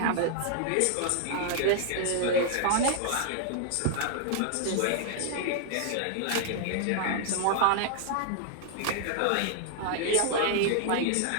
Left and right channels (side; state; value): both; different; correlation -0.01